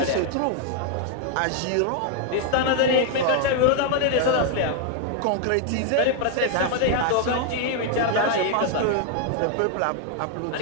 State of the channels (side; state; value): both; different; correlation 0.00